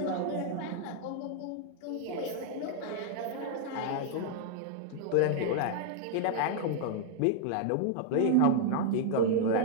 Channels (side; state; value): both; different; correlation -0.01